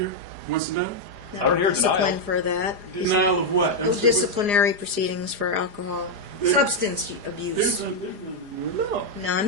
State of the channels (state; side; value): late; left; 4.9 ms